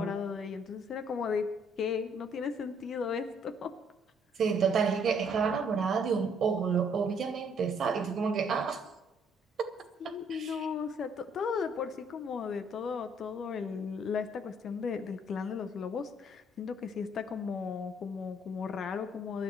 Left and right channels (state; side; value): normal; both; correlation 0.65